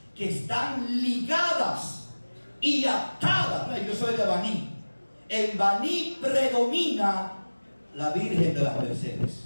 que están ligadas y atada. No, yo soy de Baní. En Baní predomina la Virgen de las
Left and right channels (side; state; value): both; inverted; correlation -1.00